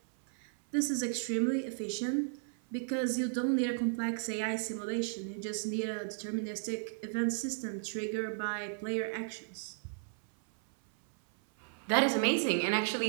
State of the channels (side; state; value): left; silent; 55 dB below the other